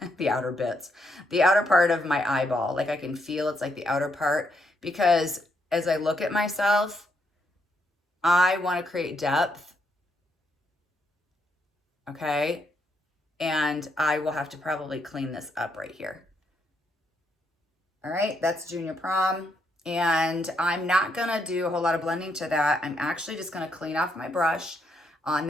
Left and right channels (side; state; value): both; normal; correlation 0.76